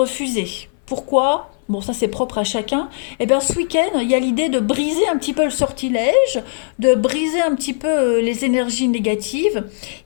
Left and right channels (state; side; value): silent; right; 59 dB below the other